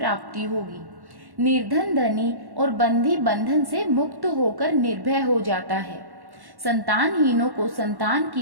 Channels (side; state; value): left; late; 1.1 ms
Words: होगी। निर्धन धनी और बंधी बंधन से मुक्त होकर निर्भय हो जाता है। संतानहीनों को संतान